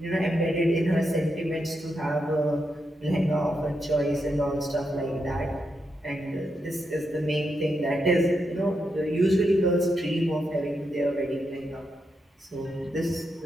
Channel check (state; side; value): normal; both; correlation 0.84